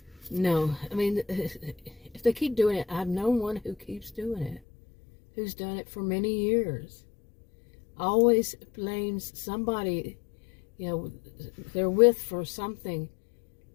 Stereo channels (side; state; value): right; drops out; at 4.6 s